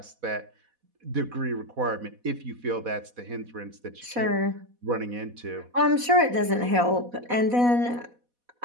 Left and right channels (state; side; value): late; left; 4.1 ms